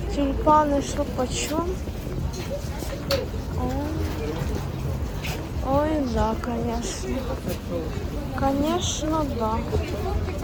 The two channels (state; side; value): identical; both; correlation 1.00